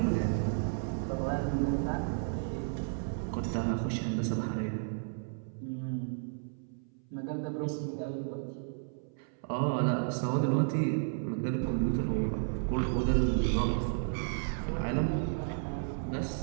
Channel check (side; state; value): left; silent; 56 dB below the other